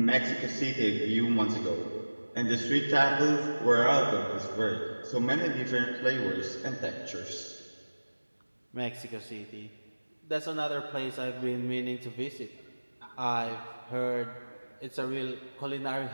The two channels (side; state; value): both; inverted; correlation -1.00